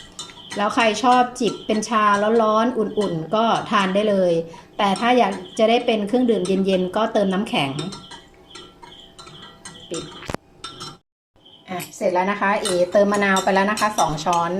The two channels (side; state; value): both; identical; correlation 1.00